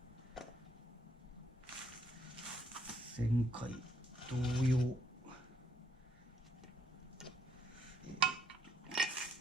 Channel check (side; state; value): both; normal; correlation 0.70